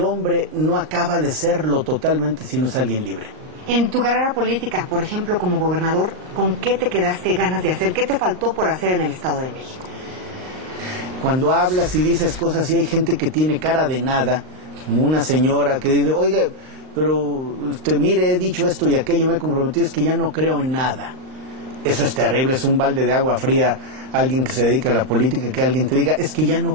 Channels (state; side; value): late; left; 38 ms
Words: no acaba de serlo totalmente si no es alguien libre. En tu carrera política, por ejemplo, como gobernador, ¿con qué te quedaste ganas de hacer? ¿Qué te faltó por hacer en el Estado de México? Cuando hablas y dices cosas y hay gente que tiene cara de nada, como una señora que dice, oiga, pero mire, he dicho esto y aquello, me he comprometido, es que ya no creo en nada. Eso es terrible, es un balde de agua fría. Alguien que se dedica a la política, que alguien te diga, es que ya